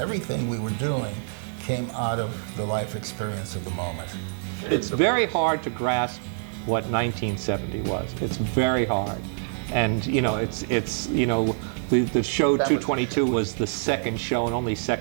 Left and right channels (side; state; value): left; silent; digital silence